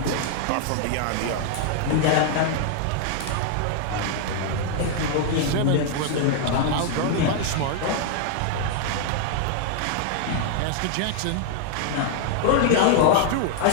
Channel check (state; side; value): different; both; correlation 0.00